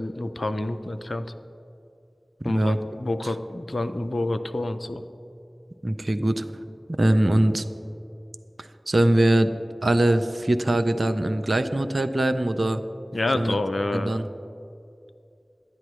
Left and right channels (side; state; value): both; normal; correlation 0.97